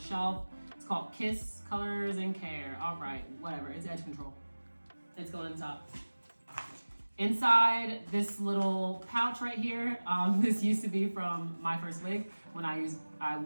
It's called Kiss Colors and Care. All right, whatever. It's edge control. It's going on top. Inside this little pouch right here. This used to be from my first wig when I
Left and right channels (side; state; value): both; inverted; correlation -1.00